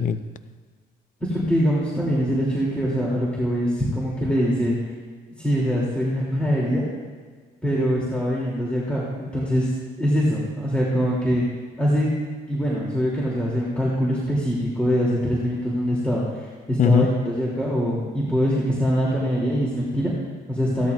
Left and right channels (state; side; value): normal; both; correlation 0.80